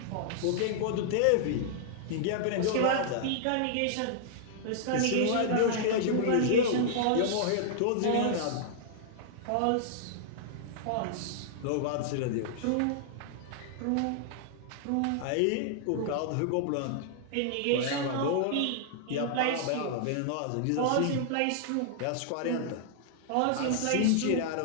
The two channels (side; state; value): both; different; correlation -0.01